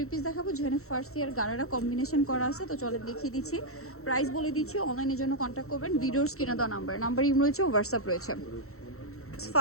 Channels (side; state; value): right; late; 0.63 ms